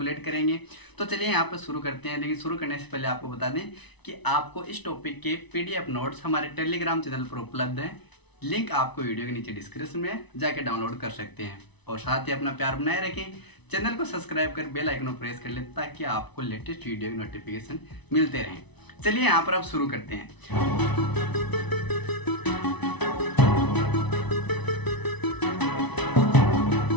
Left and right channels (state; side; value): late; right; 0.99 ms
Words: करेंगे। तो चलिए यहाँ पर शुरू करते हैं। लेकिन शुरू करने से पहले आपको बता दें कि आपको इस टॉपिक के पीडीएफ नोट्स हमारे टेलीग्राम चैनल पर उपलब्ध हैं। लिंक आपको वीडियो के नीचे डिस्क्रिप्शन में जाके डाउनलोड कर सकते हैं। और साथ ही अपना प्यार बनाए रखें, चैनल को सब्सक्राइब कर बेल आइकन को प्रेस कर लें ताकि आपको लेटेस्ट वीडियो की नोटिफिकेशन मिलते रहें। चलिए यहाँ पर अब शुरू करते हैं।